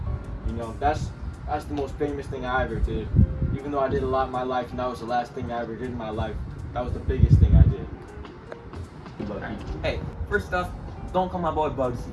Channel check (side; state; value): both; identical; correlation 1.00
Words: You know, that's the most famous thing I ever did. Even though I did a lot in my life, and that was the last thing I ever did in my life, that was the biggest thing I did. Hey, first off, don't call my boy Bugsy.